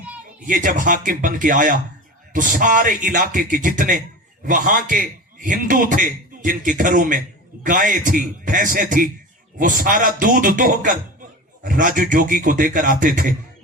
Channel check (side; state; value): both; normal; correlation 0.30